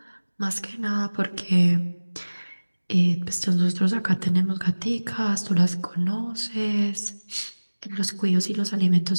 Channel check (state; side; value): inverted; both; correlation -1.00